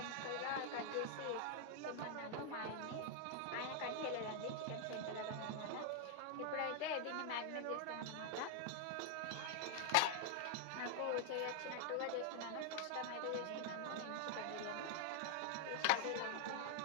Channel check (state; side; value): different; both; correlation 0.00